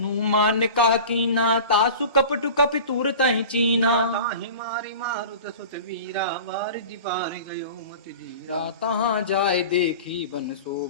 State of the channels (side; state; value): both; inverted; correlation -0.37